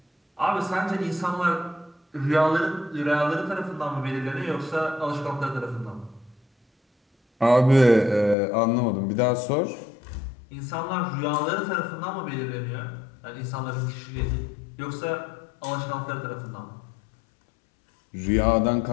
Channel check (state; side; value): drops out; right; at 8.3 s